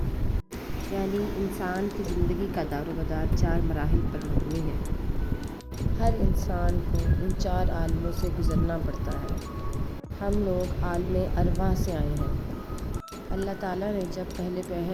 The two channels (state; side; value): identical; both; correlation 1.00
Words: یعنی انسان کی زندگی کا دار و مدار 4 مراحل پر مبنی ہے۔ ہر انسان کو ان 4 عالموں سے گزرنا پڑتا ہے۔ ہم لوگ عالم ارواح سے آئے ہیں۔ اللہ تعالیٰ نے جب